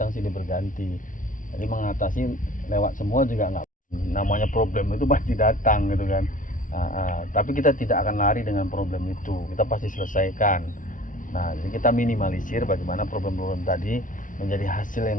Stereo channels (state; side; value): late; right; 0.38 ms